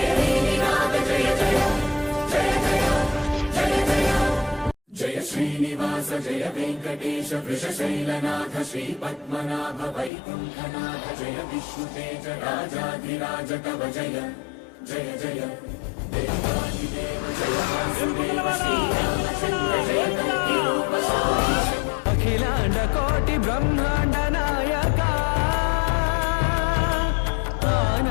निनाद जय जय जय जय जय जय जय श्रीनिवास जय वेङ्कटेश वृषशैलनाथ श्री पद्मनाभ वैकुण्ठनाथ जय विष्णुतेज राजाधिराज तव जय जय जय देवादिदेव जय वासुदेव श्रीरामचन्द्र जय कल्किरूप शौरीश अखिलांड कोटि ब्रह्मांड नायका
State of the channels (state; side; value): drops out; right; at 10.1 s